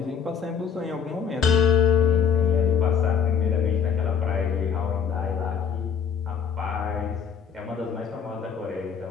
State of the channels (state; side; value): quieter; right; 7.0 dB